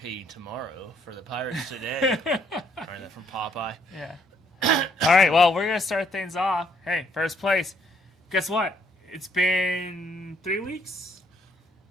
you tomorrow for the Pirates today. Learned that from Popeye. Yeah. All right, well, we're going to start things off. Hey, first place. Guess what? It's been 3 weeks.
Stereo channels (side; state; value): both; normal; correlation 0.69